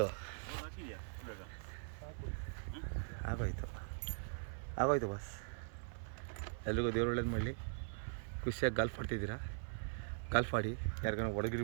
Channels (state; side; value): silent; left; 50 dB below the other